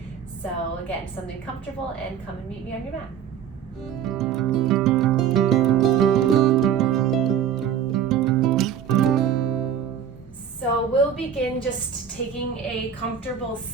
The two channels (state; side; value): quieter; left; 8.4 dB